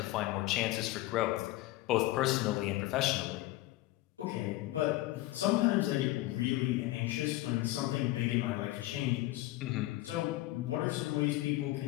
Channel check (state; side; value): quieter; right; 17.3 dB